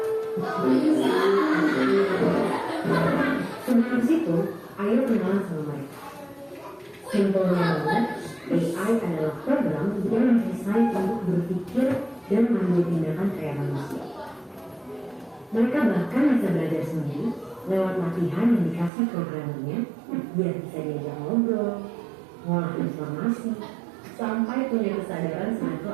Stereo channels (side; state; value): left; drops out; at 18.9 s